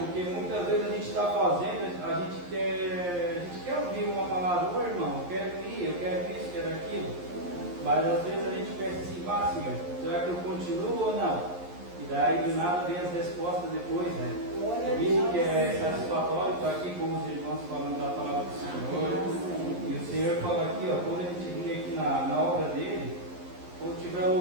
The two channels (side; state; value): left; late; 11 ms